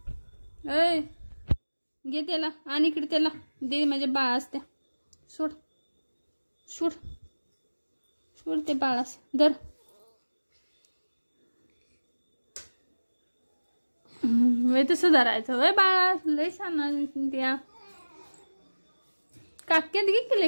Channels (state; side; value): inverted; both; correlation -1.00